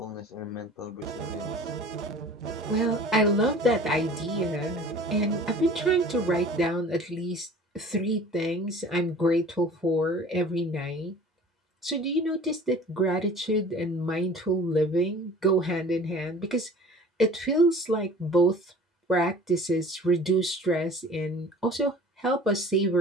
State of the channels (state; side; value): normal; both; correlation 0.44